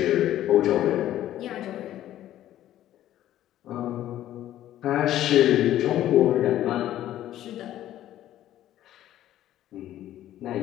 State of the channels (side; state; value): right; quieter; 12.8 dB